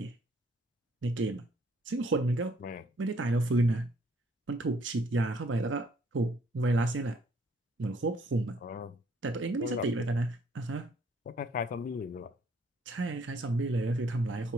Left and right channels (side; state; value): both; normal; correlation 0.65